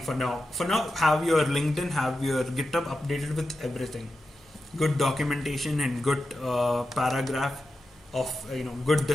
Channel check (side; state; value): both; normal; correlation 0.91